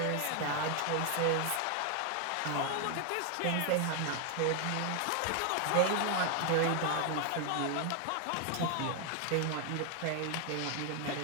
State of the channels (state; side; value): different; both; correlation 0.01